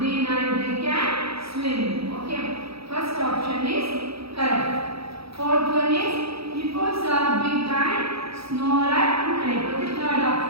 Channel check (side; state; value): left; late; 0.77 ms